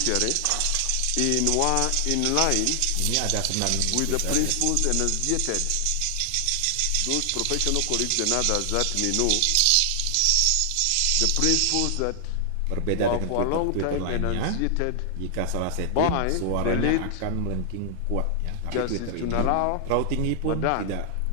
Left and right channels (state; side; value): different; both; correlation 0.00